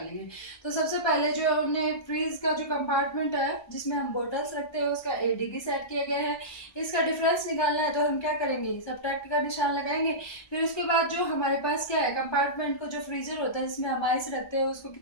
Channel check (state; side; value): late; right; 1.2 ms